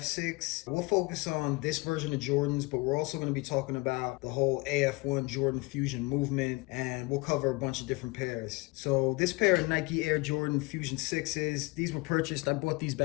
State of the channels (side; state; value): right; quieter; 25.3 dB